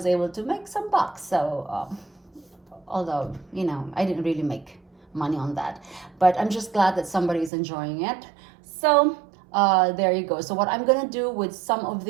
able to make some bucks. So, although, I didn't really make money on that. But I'm just glad that somebody's enjoying it. So there you go. So what I'm gonna do with some of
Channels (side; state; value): left; drops out; at 7.5 s